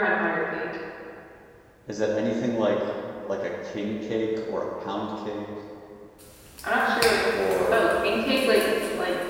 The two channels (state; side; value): identical; both; correlation 1.00